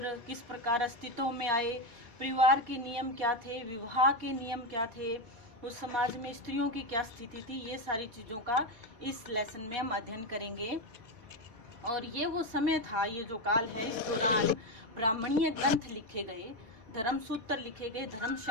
किस प्रकार अस्तित्व में आए, परिवार के नियम क्या थे, विवाह के नियम क्या थे, उस समाज में स्त्रियों की क्या स्थिति थी, ये सारी चीज़ों का इस लेसन में हम अध्ययन करेंगे। और ये वो समय था, ये जो काल है, इस दौरान ब्राह्मणीय ग्रंथ लिखे गए, धर्म सूत्र लिखे गए,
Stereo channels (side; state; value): left; late; 4.2 ms